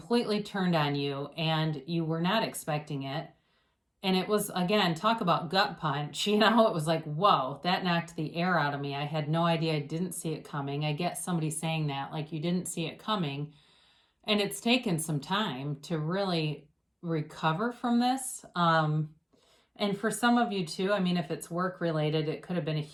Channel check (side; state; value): both; identical; correlation 1.00